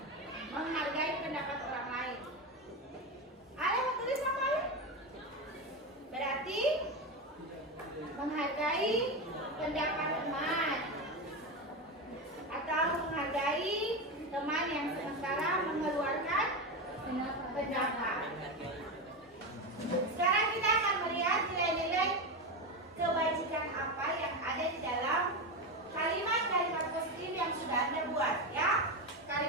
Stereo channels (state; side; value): normal; both; correlation 0.16